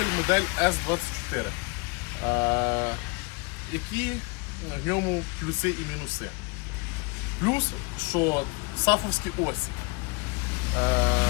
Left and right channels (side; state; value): right; quieter; 29.3 dB